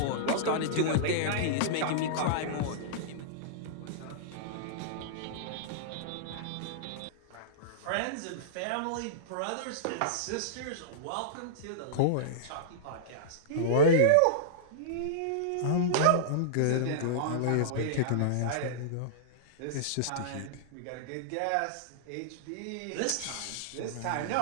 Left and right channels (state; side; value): different; both; correlation -0.02